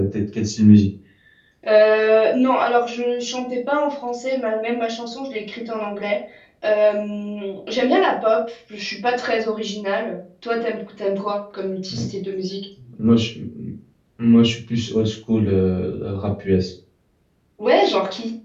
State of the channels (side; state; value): both; identical; correlation 1.00